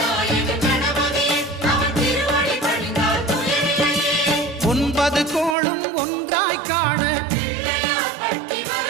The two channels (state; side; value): drops out; left; at 5.6 s